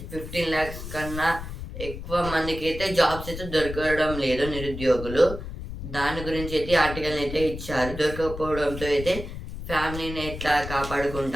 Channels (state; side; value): noise; left; rumble, 9 dB below the sound